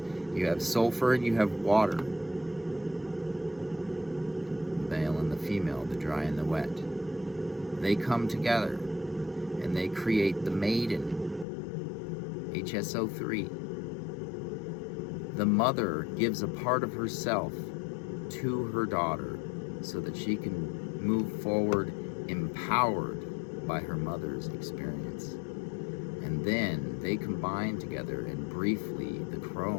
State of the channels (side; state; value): right; drops out; at 11.5 s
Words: You have sulfur and you have water, the male and the female, the dry and the wet. They come together and they create the Maiden, HSO3. The mother gives a part of herself to her daughter so that she can move forward empowered by her mother's experience. And then they combine together, and briefly the